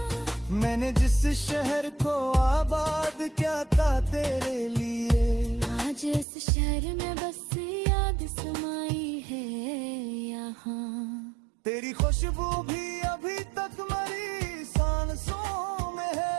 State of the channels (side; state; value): left; drops out; at 6.2 s